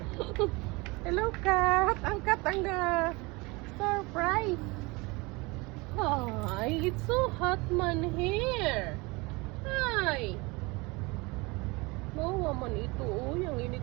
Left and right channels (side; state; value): left; quieter; 25.4 dB